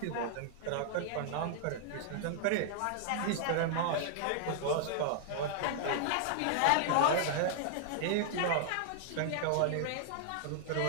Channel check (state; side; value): different; both; correlation -0.01